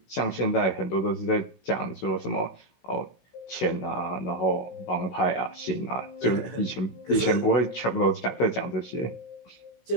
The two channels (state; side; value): late; right; 16 ms